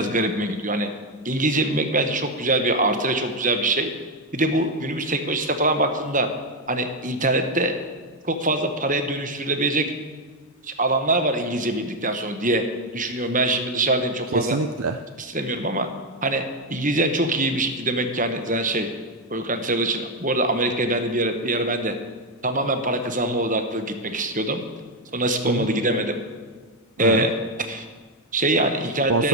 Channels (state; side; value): normal; both; correlation 0.05